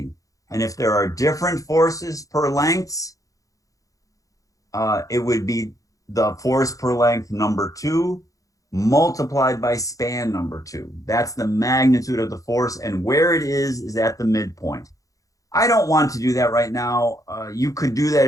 And if there are different forces per lengths, it would be the force per length number 2 multiplied by span number 2. That's the magnitude of the force, and where it is at the midpoint. I don't want to do that right now. You could do that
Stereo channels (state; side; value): late; right; 0.16 ms